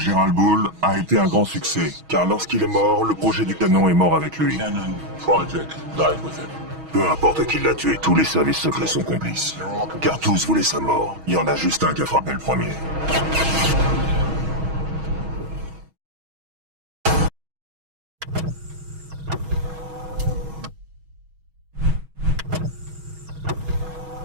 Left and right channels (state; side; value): late; left; 6.3 ms